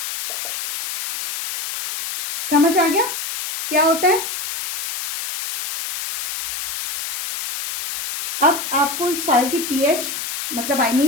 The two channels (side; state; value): left; noise; hiss, 6 dB below the sound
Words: समझ आ गया क्या होता है। अब आपको इस सॉइल की पीएच मतलब आई